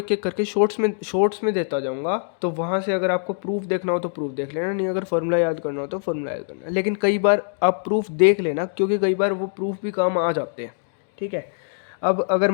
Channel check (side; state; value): right; silent; digital silence